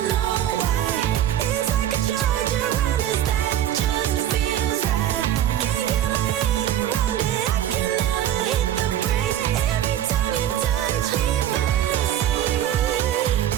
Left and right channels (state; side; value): quieter; left; 11.3 dB